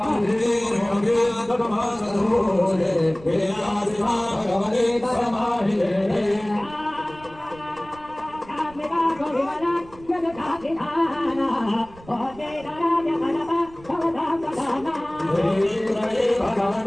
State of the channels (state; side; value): noise; right; rumble, 21 dB below the sound